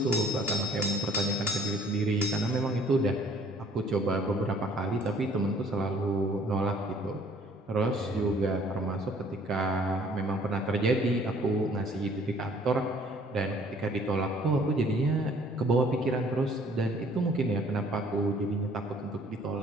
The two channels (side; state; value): both; normal; correlation 0.57